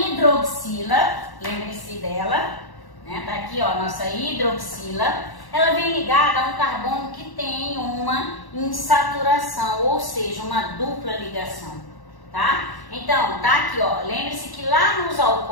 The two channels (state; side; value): late; right; 1.1 ms